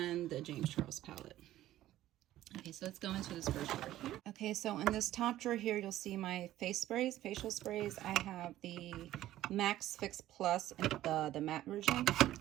the James Charles palette. Okay, so let's go into this first drawer here. Okay, so in this top drawer here, you'll see my face sprays, facial sprays. I have the Max Fix Plus in the matte version.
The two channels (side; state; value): left; quieter; 14.0 dB